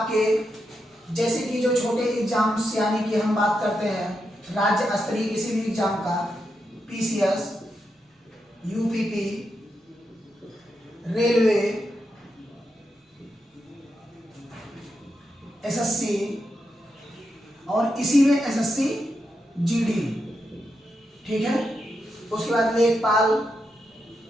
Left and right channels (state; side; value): normal; both; correlation 0.85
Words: जैसे कि जो छोटे एग्जाम्स यानी कि हम बात करते हैं राज्य स्तरीय किसी भी एग्जाम का, पीसीएस, यूपीपी, रेलवे, एसएससी और इसी में एसएससी जीडी। ठीक है, उसके बाद लेखपाल